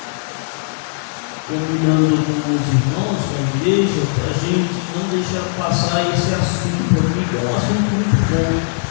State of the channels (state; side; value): silent; right; digital silence